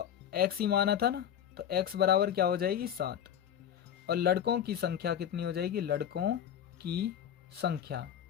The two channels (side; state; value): right; quieter; 9.6 dB